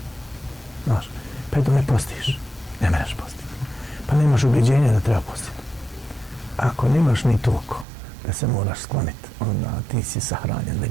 Znaš, pa eto ne postiš, ne mereš postiti. Pa nemaš ubjeđenja da treba postiti. Ako nemaš ni toliko da se moraš skloniti, onda ti si sahranjen,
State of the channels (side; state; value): left; drops out; at 7.9 s